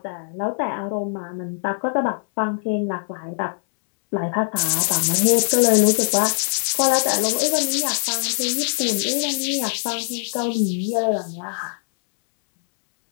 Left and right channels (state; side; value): silent; right; 62 dB below the other